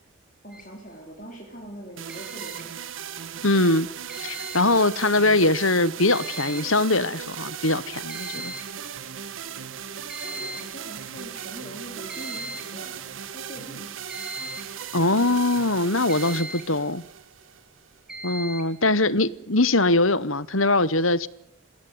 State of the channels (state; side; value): normal; both; correlation -0.10